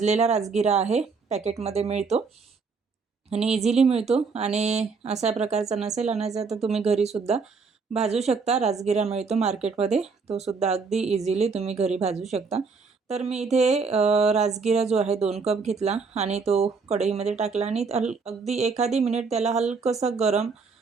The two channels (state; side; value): quieter; left; 4.8 dB